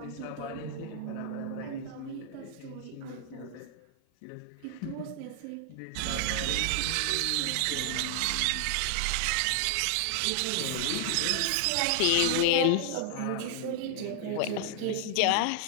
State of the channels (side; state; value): both; different; correlation 0.00